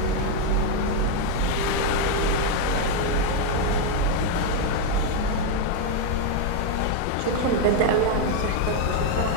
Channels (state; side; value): different; both; correlation 0.01